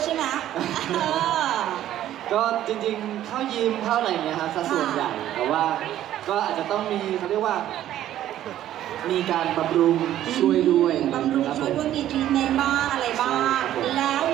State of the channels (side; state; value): left; quieter; 12.4 dB